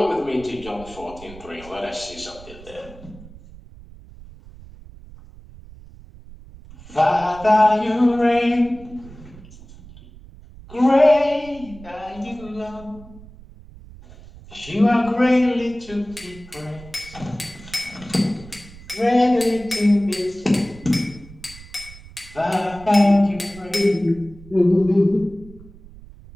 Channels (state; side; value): noise; right; rumble, 19 dB below the sound